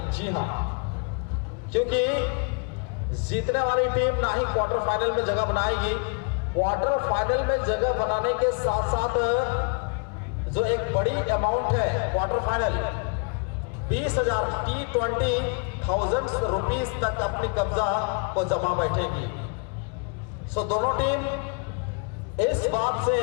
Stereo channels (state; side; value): quieter; right; 37.4 dB